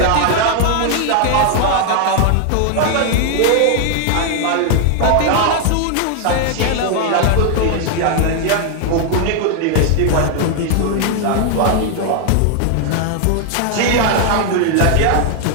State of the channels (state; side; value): different; both; correlation 0.00